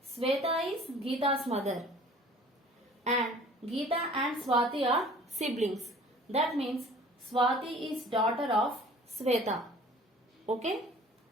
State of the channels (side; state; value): both; normal; correlation 0.49